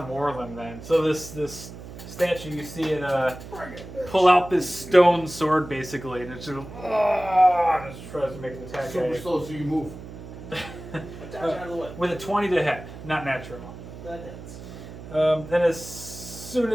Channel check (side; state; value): right; noise; hum, 13 dB below the sound